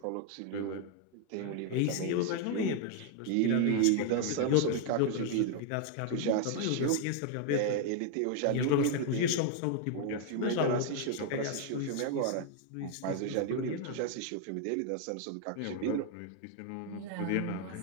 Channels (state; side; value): different; both; correlation 0.00